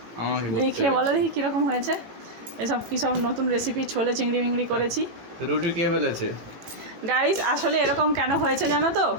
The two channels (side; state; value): left; late; 18 ms